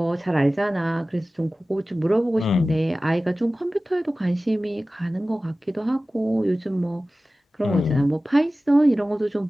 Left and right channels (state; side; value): normal; both; correlation 0.97